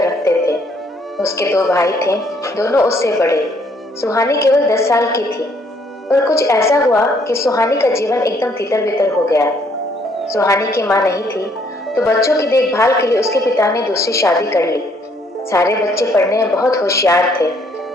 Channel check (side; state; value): both; normal; correlation 0.66